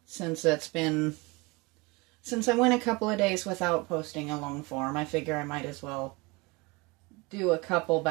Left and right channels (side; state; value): left; quieter; 25.1 dB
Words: since I went a couple of days without posting a long form. I figure I might as well do a couple